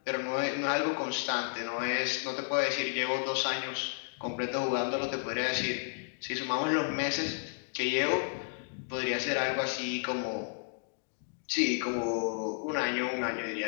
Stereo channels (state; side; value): silent; right; digital silence